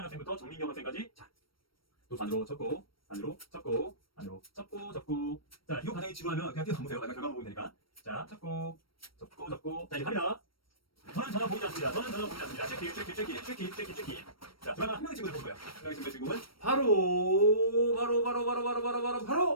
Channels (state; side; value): late; right; 0.74 ms